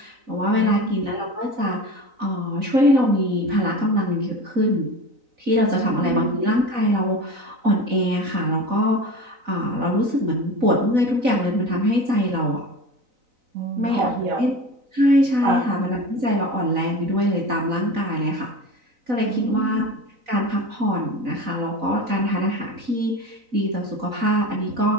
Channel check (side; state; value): left; late; 4.0 ms